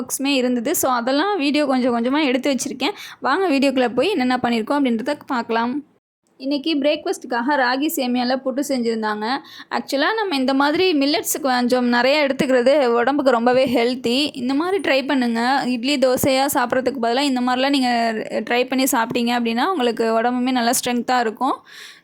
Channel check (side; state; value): both; identical; correlation 1.00